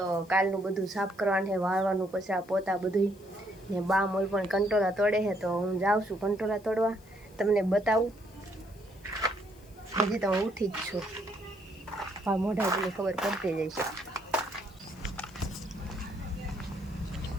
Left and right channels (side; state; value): left; noise; hiss, 27 dB below the sound